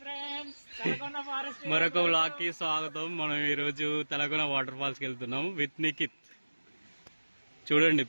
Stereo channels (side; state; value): both; inverted; correlation -1.00